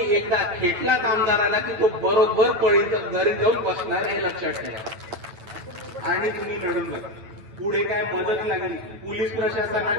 एकदा खेटलात आमदाराला की तो बरोबर घरी जाऊन बसणार, हे लक्षात ठेवा. आणि तुम्ही लढून बघा. पुढे काय मदत लागली, पोलीस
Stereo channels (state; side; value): late; left; 8.9 ms